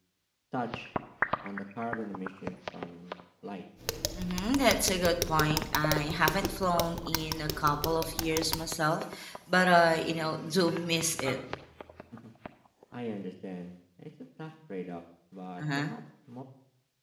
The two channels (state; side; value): identical; both; correlation 1.00